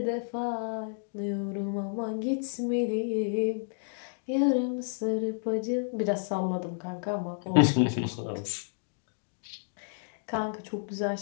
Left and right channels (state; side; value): silent; right; digital silence